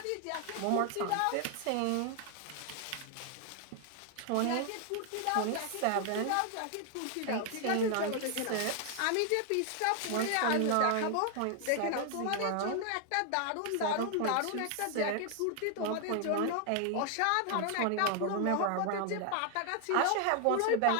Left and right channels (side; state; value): both; different; correlation 0.00